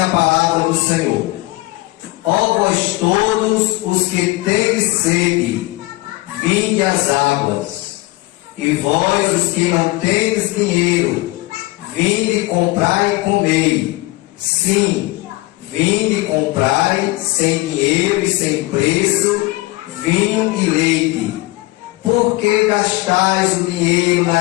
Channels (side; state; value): right; quieter; 21.4 dB